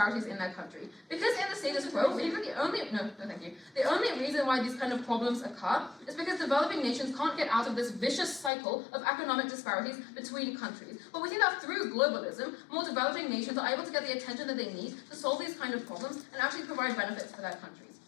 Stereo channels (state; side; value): drops out; right; at 8.5 s